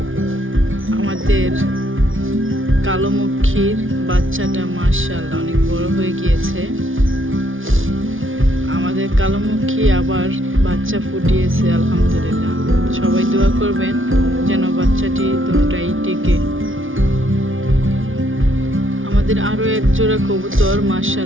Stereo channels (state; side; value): late; left; 0.58 ms